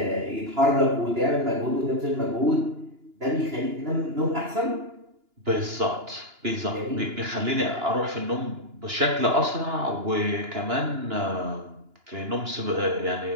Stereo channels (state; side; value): late; left; 2.9 ms